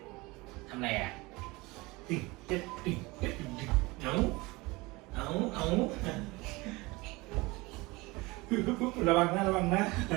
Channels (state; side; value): quieter; left; 23.0 dB